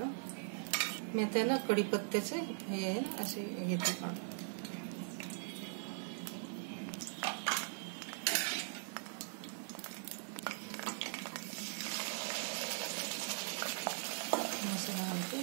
मी आता ना कढीपत्त्याचे हे असे घेते काढून, मसाला घालते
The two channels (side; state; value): left; silent; 51 dB below the other